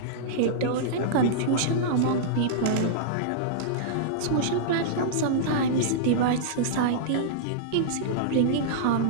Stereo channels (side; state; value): both; different; correlation -0.02